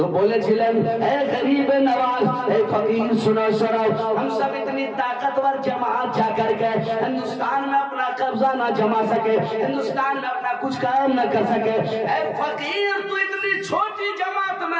बोलेছিলেন, ए गरीब नवाज, ए फकीर सुनो सुनो, हम सब इतनी ताकतवर जमात जाकर के हिंदुस्तान में अपना कब्जा ना जमा सके, हिंदुस्तान में अपना कुछ काम न कर सके, ए फकीर तू इतनी छोटी जमात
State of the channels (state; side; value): identical; both; correlation 1.00